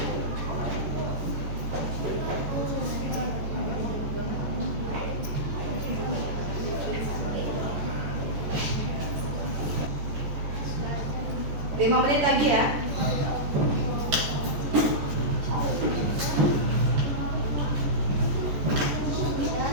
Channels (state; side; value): late; left; 14 ms